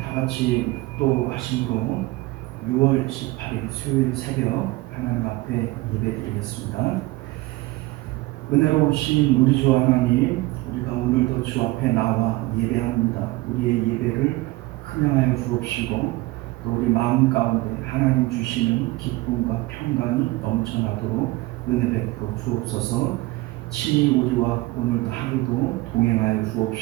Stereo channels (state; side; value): quieter; left; 20.3 dB